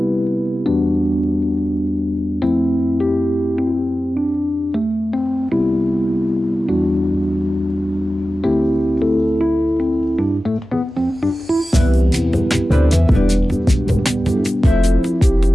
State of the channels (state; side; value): normal; both; correlation 0.95